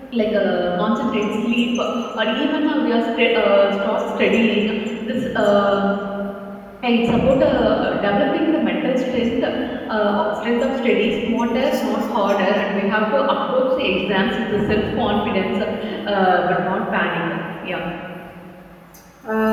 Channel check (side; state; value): both; identical; correlation 1.00